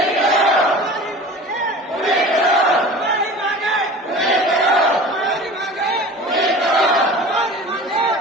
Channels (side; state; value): both; normal; correlation 0.39